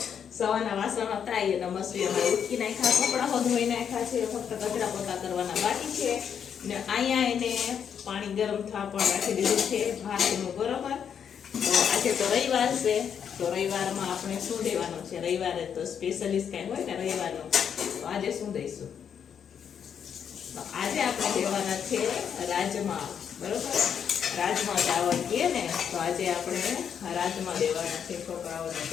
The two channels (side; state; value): right; quieter; 7.9 dB